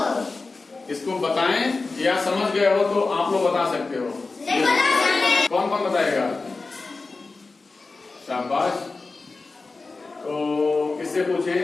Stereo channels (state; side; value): quieter; right; 3.8 dB